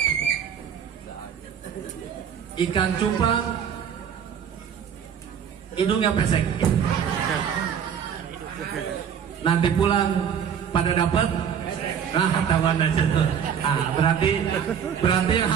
Ikan cupang, hidungnya pesek. Nanti pulang pada dapat. Nah, kawan aja tuh. Ah, berarti yang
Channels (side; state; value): left; quieter; 8.1 dB